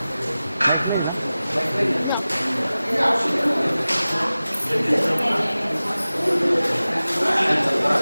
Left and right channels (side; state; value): both; inverted; correlation -0.97